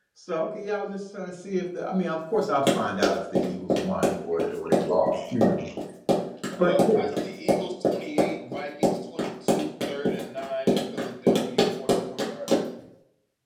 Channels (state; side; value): identical; both; correlation 1.00